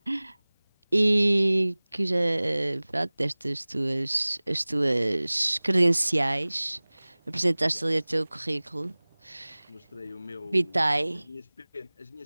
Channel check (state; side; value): inverted; both; correlation -1.00